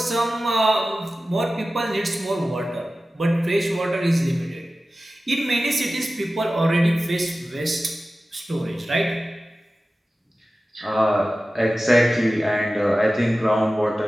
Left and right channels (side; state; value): both; normal; correlation 0.95